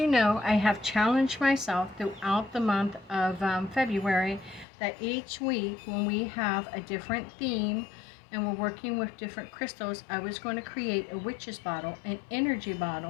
know, I have challenged myself throughout the month of February that each week when we have a different theme and we're working with different crystals, I was going to create a witch's bottle, an energy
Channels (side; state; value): right; drops out; at 4.7 s